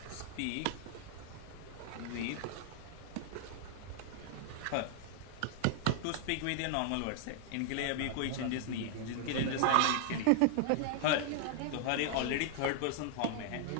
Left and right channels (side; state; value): both; different; correlation 0.00